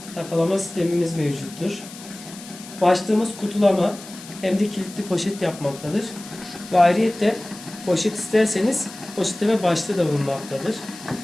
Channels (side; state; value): left; noise; hiss, 16 dB below the sound